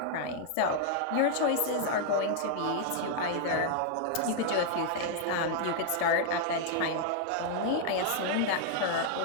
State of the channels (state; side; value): different; both; correlation 0.00